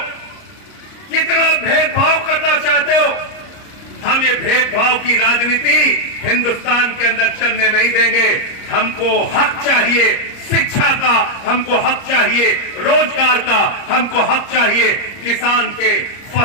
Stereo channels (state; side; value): late; right; 29 ms